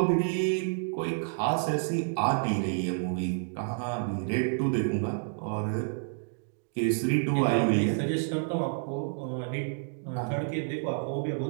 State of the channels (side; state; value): left; silent; digital silence